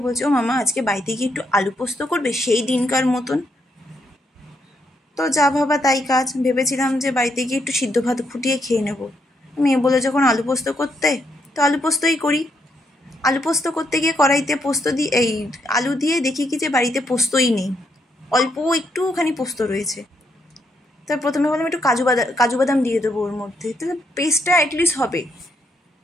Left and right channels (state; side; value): normal; both; correlation 0.77